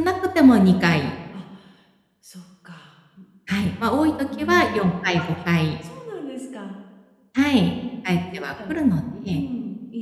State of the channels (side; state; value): both; identical; correlation 1.00